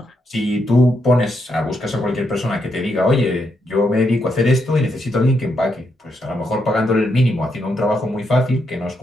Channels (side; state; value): both; normal; correlation 0.80